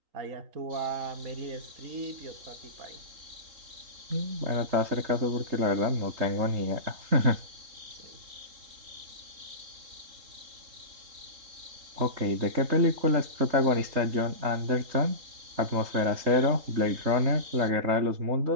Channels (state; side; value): late; left; 3.8 ms